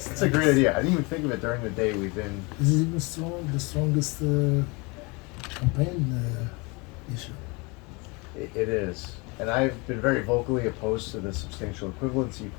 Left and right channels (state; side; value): quieter; right; 28.1 dB